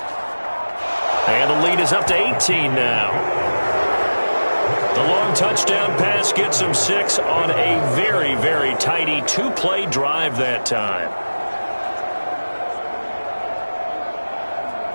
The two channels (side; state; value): both; inverted; correlation -1.00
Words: And the lead is up to 18 now. The long touchdown pass gets them 6 on a very, very tidy 2-play drive that time.